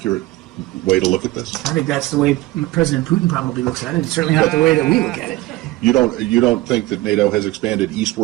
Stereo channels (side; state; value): left; quieter; 18.3 dB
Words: way to look at this? I think that's the way President Putin probably looks at it. It's certainly not the way that we look at it. You don't think that NATO has expanded